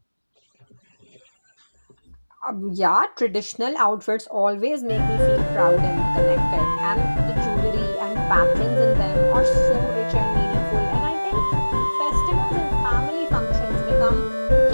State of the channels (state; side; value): inverted; both; correlation -1.00